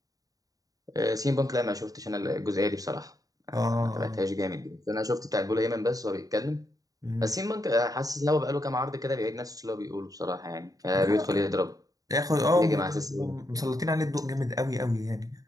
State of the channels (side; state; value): left; late; 0.17 ms